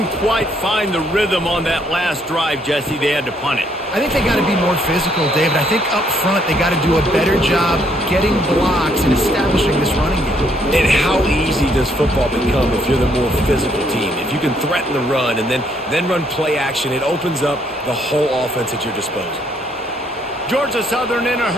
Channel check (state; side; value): normal; both; correlation 0.69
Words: quite find the rhythm on that last drive, Jesse. They had to punt it. I think they got to be more physical, David. I think up front they got to do a better job getting blocks and establishing this running game. And how easy does football become if you're the more physical team? If you can threaten the run and then run play action, it opens up the whole offense at your disposal. Georgia Southern in a